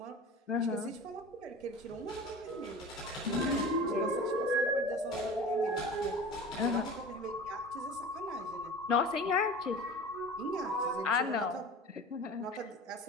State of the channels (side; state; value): both; normal; correlation 0.37